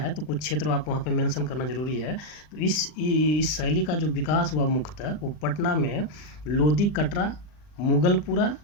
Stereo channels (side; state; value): right; late; 39 ms